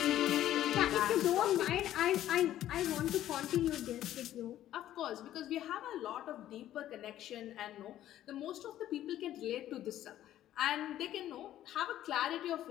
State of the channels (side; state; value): right; quieter; 12.7 dB